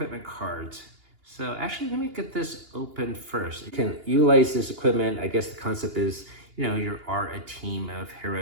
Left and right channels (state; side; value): late; left; 2.8 ms